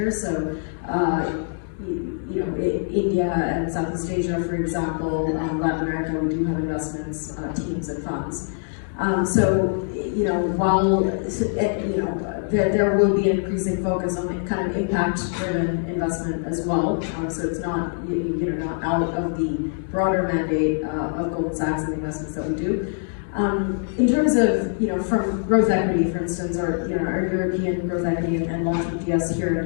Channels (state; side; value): silent; right; digital silence